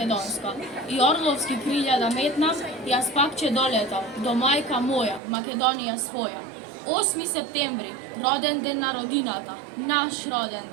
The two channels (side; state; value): left; drops out; at 5.2 s